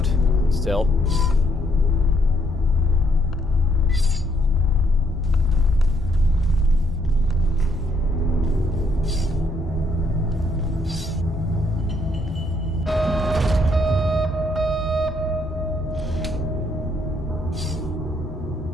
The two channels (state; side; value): normal; both; correlation 0.71